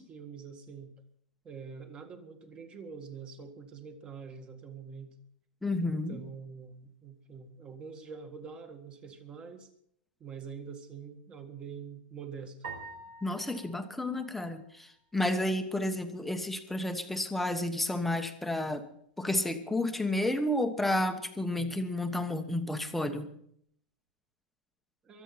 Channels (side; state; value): both; normal; correlation 0.74